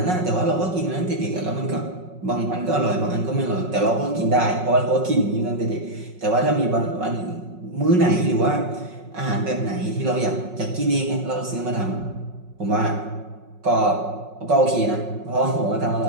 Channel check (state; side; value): late; left; 5.4 ms